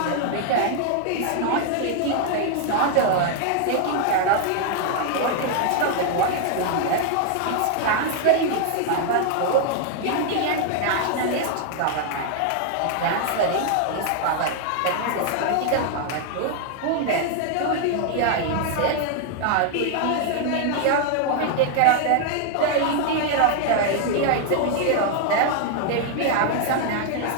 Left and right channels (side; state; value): both; different; correlation 0.00